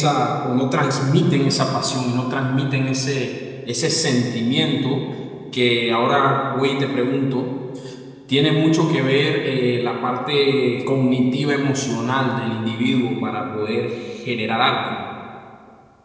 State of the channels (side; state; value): both; identical; correlation 1.00